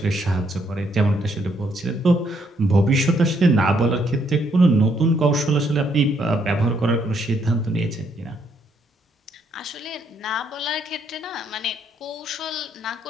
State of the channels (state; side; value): normal; both; correlation 0.72